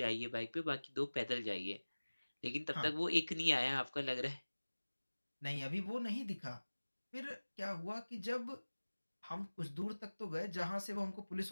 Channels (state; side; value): inverted; both; correlation -1.00